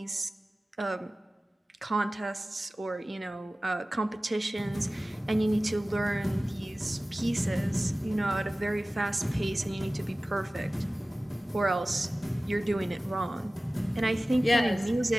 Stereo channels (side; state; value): both; normal; correlation 0.97